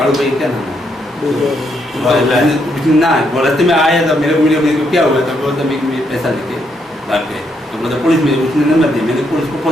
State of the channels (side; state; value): both; normal; correlation 0.76